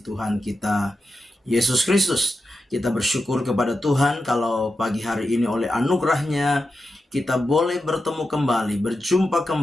Tuhan kita, Yesus Kristus. Kita bersyukur kepada Tuhan kalau pagi hari ini oleh anugerahnya kita boleh bertemu kembali, berjumpa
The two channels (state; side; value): normal; both; correlation 0.89